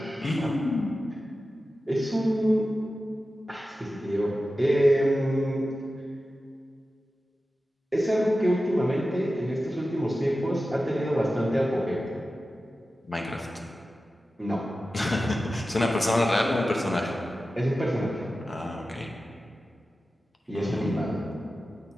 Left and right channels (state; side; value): normal; both; correlation 0.94